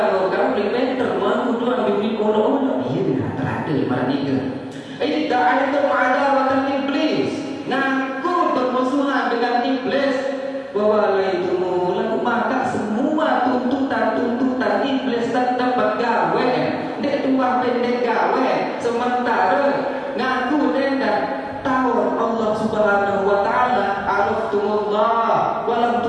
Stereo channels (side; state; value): both; identical; correlation 1.00